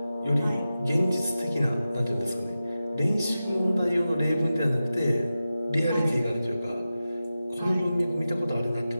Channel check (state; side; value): inverted; both; correlation -0.93